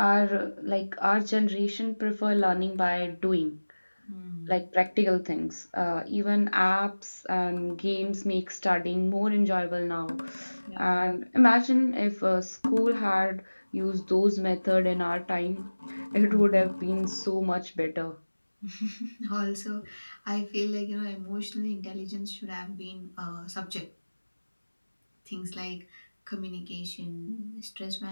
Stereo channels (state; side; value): inverted; both; correlation -1.00